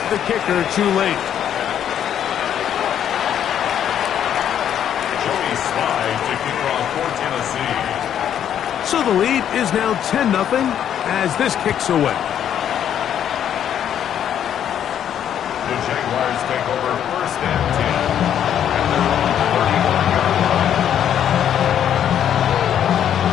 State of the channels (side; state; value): right; quieter; 9.7 dB